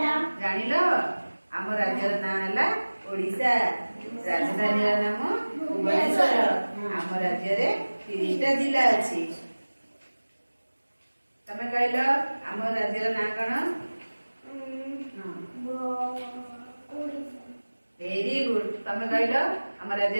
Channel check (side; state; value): both; inverted; correlation -1.00